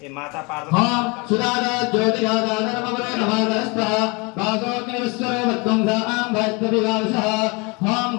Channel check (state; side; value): quieter; right; 28.6 dB